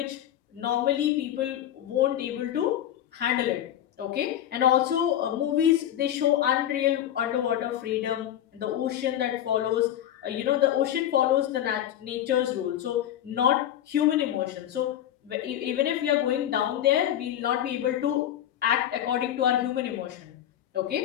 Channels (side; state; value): right; quieter; 11.4 dB